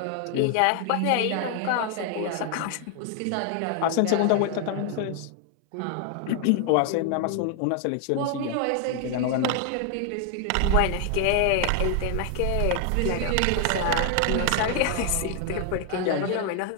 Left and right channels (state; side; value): different; both; correlation 0.00